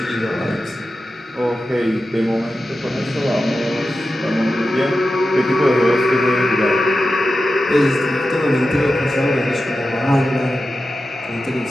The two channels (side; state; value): both; normal; correlation 0.92